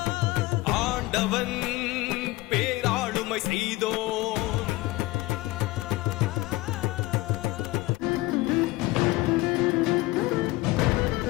ஆண்டவன் பேராளுமை செய்தோ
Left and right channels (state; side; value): quieter; right; 19.8 dB